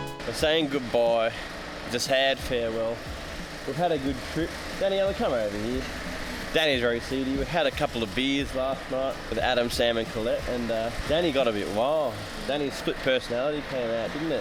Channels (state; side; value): identical; both; correlation 1.00